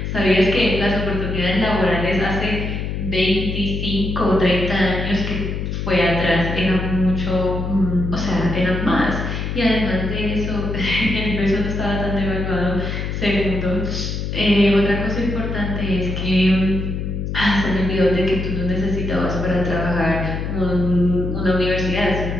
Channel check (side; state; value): left; noise; hum, 3 dB below the sound